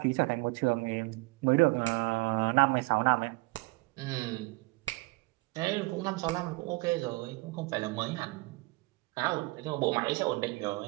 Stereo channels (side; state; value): left; quieter; 24.2 dB